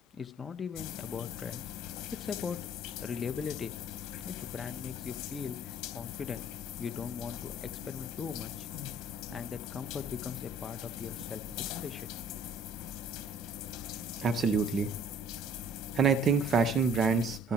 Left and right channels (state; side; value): normal; both; correlation 0.55